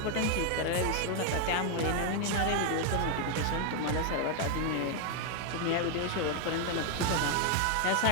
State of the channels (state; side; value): different; both; correlation 0.00